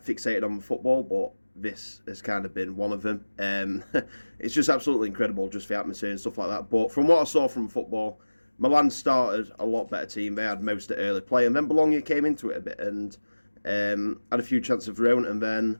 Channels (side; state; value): both; inverted; correlation -1.00